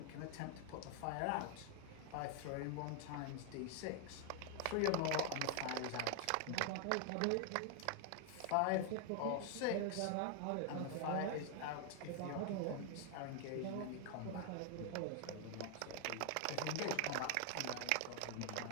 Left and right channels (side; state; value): both; different; correlation 0.00